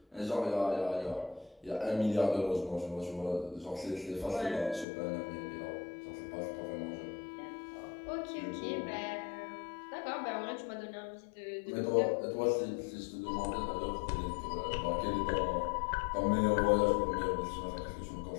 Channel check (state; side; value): drops out; right; at 4.9 s